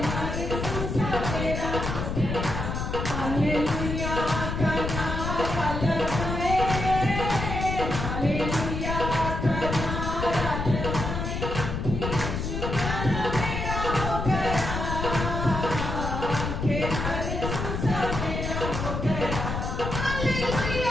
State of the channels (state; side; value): noise; left; rumble, 3 dB below the sound